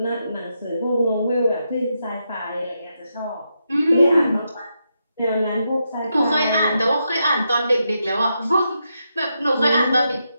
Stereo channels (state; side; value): inverted; both; correlation -0.83